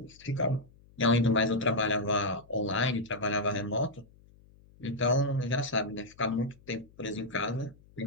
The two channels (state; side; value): noise; left; hum, 26 dB below the sound